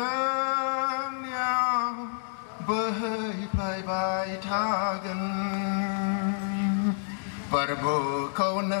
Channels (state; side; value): silent; right; digital silence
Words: nhau bơi bay bay tha gần bờ bờ câu